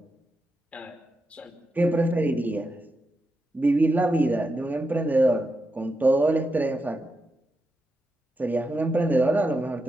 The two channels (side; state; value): both; normal; correlation 0.86